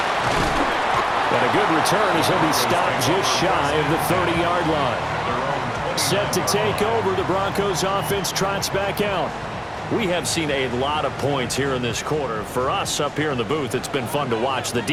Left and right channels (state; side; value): identical; both; correlation 1.00